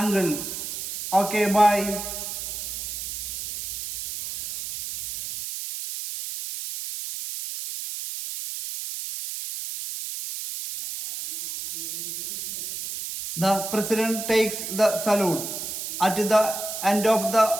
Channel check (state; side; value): noise; right; hiss, 6 dB below the sound